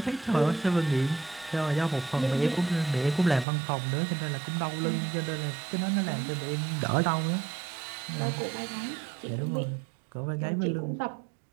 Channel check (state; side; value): drops out; left; at 3.5 s